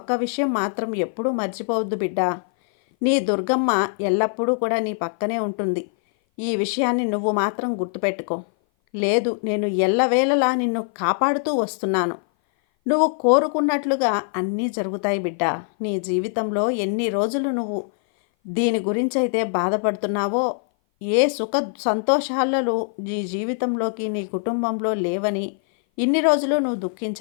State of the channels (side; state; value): right; silent; 57 dB below the other